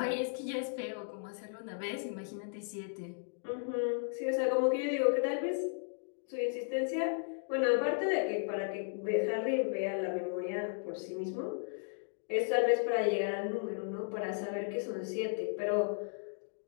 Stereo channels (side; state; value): right; silent; digital silence